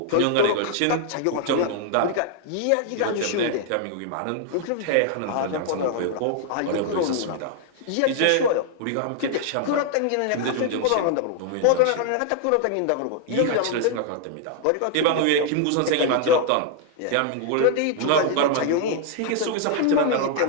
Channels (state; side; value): different; both; correlation 0.00